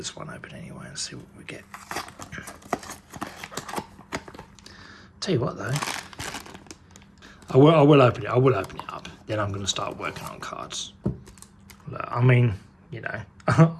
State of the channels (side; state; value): both; identical; correlation 1.00